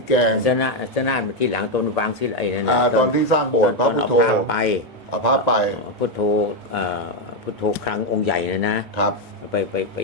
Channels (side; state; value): both; normal; correlation 0.04